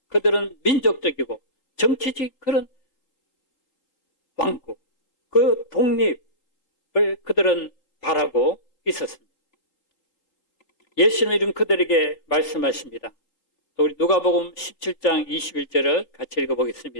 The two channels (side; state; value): right; late; 3.8 ms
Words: 그들은 민족적이고 정치적 그런 왕국, 그 독립을 그들은 바라고 있었습니다. 예수님은 그들에게 말씀하십니다. 우리 누가복음 17장 21절을 같이